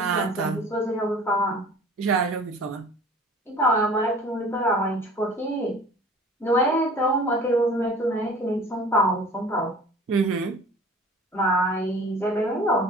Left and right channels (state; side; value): normal; both; correlation 0.45